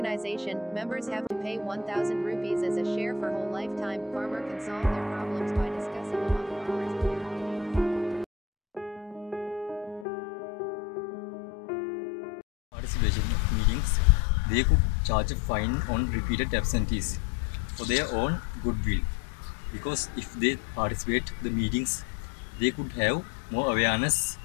Members have to pay 1,000 rupees as a share for whole lifetime. Farmer can solve their problems by discussing among farmers at their meetings. Participation of meetings, they could charge a fine on repeated absentees for their own goodwill. Because if they participate the meetings, they could have more awareness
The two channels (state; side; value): drops out; right; at 10.1 s